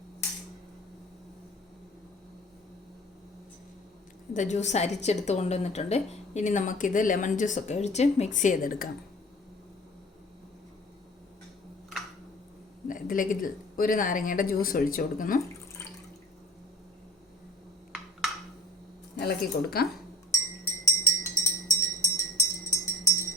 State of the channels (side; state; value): both; normal; correlation 0.45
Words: ഇത് ജ്യൂസ് അരിച്ചെടുത്ത് കൊണ്ടുവന്നിട്ടുണ്ട്. ഇനി നമുക്കിത് ലെമൺ ജ്യൂസൊക്കെ ഒഴിച്ച് മിക്സ് ചെയ്തെടുക്കാം. ഇതിലേക്ക് ഒരു നാരങ്ങയുടെ ജ്യൂസ് ഒഴിച്ചു കൊടുക്കുന്നു. ഇളക്കി കൊടുക്കാം.